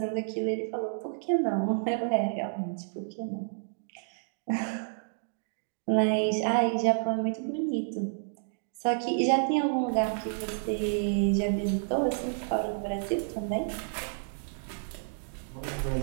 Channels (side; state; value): left; silent; digital silence